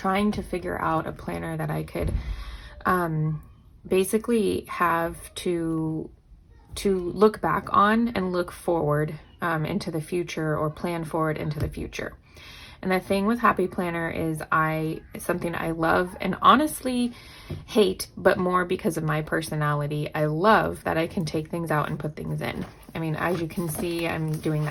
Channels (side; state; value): both; identical; correlation 1.00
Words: to figure out a planner that I could basically have to look back on and look forward into the future, or plan forward into the future. And the thing with Happy Planner is something I love and honestly hate, but more because of my personality. I love that I can take things out and put things in. I mean, as you can see, I'm doing